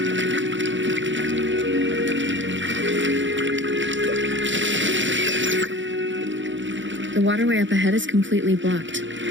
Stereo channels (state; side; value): late; left; 0.55 ms